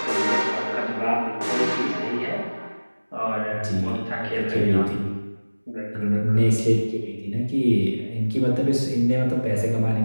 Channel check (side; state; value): both; inverted; correlation -1.00